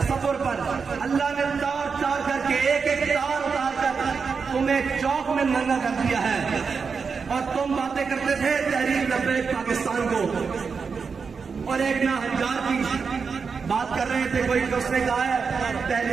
پر اللہ نے تار تار کر کے ایک ایک تار اتار کر تمہیں چوک میں ننگا کر دیا ہے. اور تم باتیں کرتے تھے تحریک لبیک پاکستان کو, اور ایک نہ ہزار کی بات کر رہے تھے کوئی, اس نے کہا ہے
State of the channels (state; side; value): quieter; left; 5.4 dB